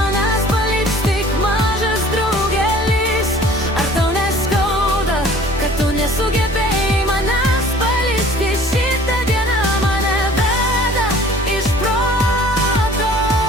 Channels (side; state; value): both; normal; correlation 0.50